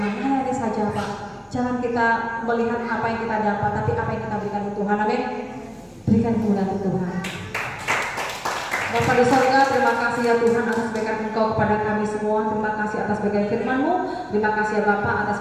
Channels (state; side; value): identical; both; correlation 1.00